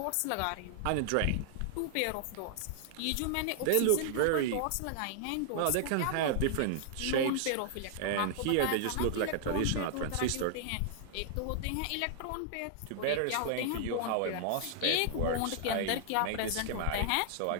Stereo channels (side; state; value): both; different; correlation 0.00